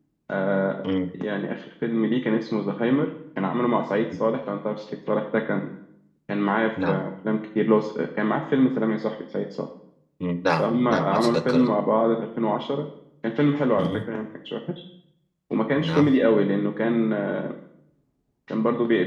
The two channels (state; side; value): identical; both; correlation 1.00